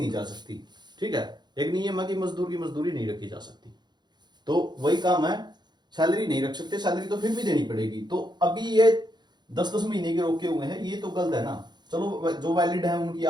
जा सकती, ठीक है। एक नियम है कि मजदूर की मजदूरी नहीं रखी जा सकती, तो वही काम है, सैलरी नहीं रख सकते, सैलरी तो फिर भी देनी पड़ेगी। तो अभी ये 10-10 महीने के रोके हुए हैं, ये तो गलत है ना। चलो जो वैलिड है उनकी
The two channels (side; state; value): left; late; 0.21 ms